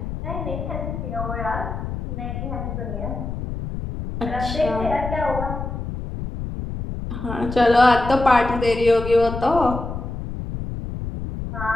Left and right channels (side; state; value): left; noise; rumble, 6 dB below the sound